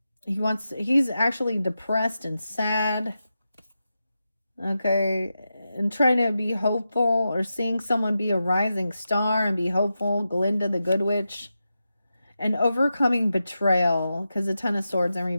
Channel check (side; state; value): both; inverted; correlation -0.90